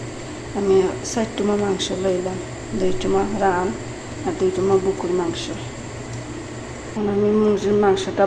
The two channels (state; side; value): identical; both; correlation 1.00